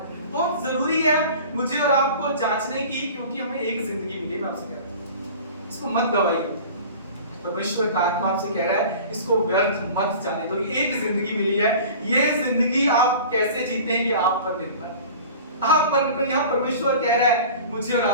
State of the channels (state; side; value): inverted; both; correlation -0.40